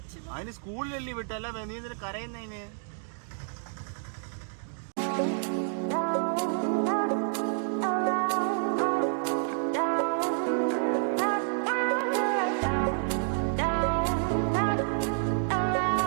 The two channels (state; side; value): silent; left; 58 dB below the other